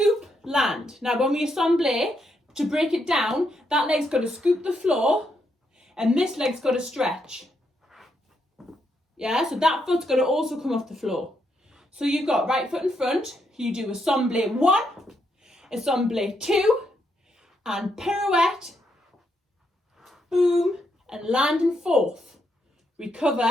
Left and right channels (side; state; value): both; normal; correlation 0.79